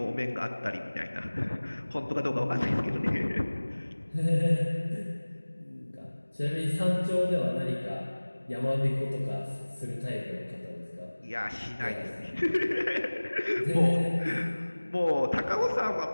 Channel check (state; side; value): inverted; both; correlation -1.00